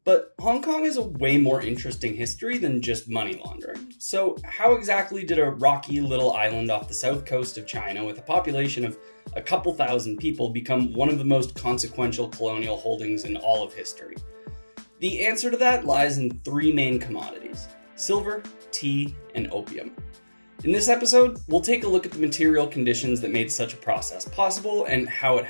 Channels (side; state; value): both; inverted; correlation -1.00